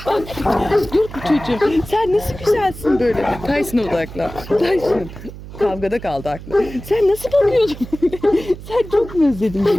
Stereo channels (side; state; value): right; noise; hum, 14 dB below the sound